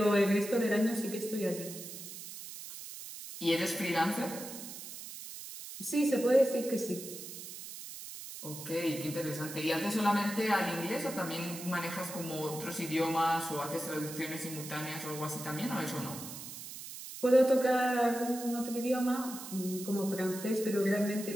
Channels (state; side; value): noise; right; hiss, 11 dB below the sound